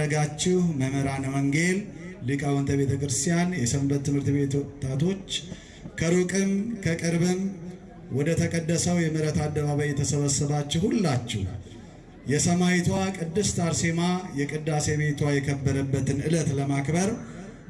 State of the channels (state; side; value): identical; both; correlation 1.00